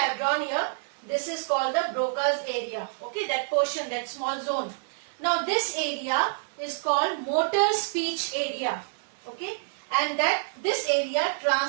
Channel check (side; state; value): left; silent; 60 dB below the other